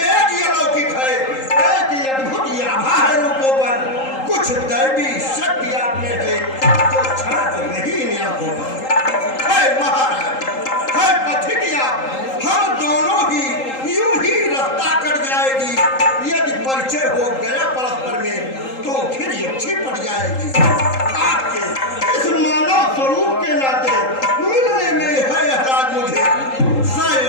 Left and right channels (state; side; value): late; right; 3.8 ms